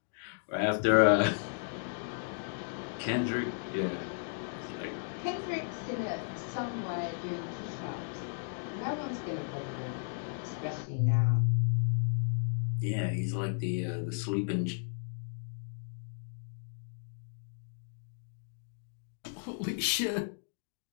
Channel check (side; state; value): right; silent; digital silence